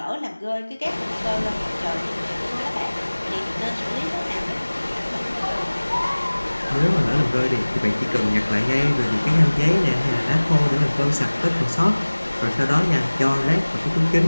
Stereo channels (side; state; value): both; inverted; correlation -1.00